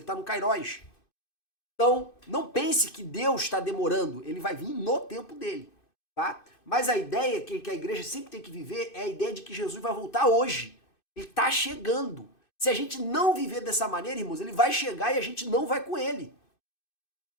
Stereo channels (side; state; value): right; late; 2.6 ms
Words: está no Kairos. Então, não pense que Deus está demorando, ele vai vir no tempo dele, tá? Mas a ideia que a igreja sempre tem que viver é a ideia de que Jesus vai voltar hoje. Ele está chegando. Se a gente não viver dessa maneira, irmãos, ele vai chegar e a gente não vai com ele.